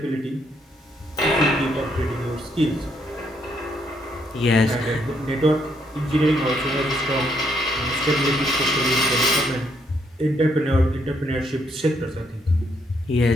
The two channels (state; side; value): normal; both; correlation 0.73